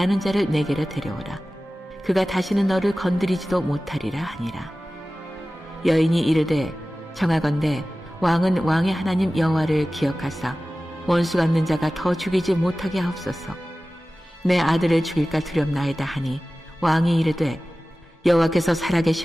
자를 내게로 데려오라. 그가 다시는 너를 건드리지도 못하리라 하니라. 여인이 이르되 청하건대 왕은 왕의 하나님 여호와를 기억하사 원수 갚는 자가 더 죽이지 못하게 하옵소서. 내 아들을 죽일까 두렵나이다 하니 왕이 이르되 여호와께서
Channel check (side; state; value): both; normal; correlation 0.96